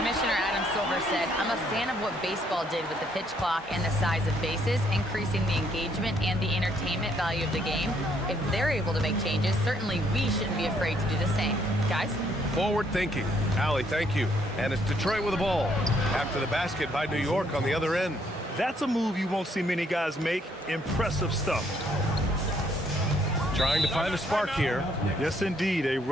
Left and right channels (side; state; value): both; normal; correlation 0.69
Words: Adam Silver said, I'm a fan of what baseball did with the pitch clock and the size of bases, increasing the engagement and the entertainment value of the game. If they're able to make changes, certainly we shouldn't be afraid to do the same. Guys? Forward thinking. Allie, thank you. And it's Detroit with the ball. After the basket by New York on the other end. That's a move you won't see many guys make. Impressive stuff. Trying to find a spark here. Yes, indeed. A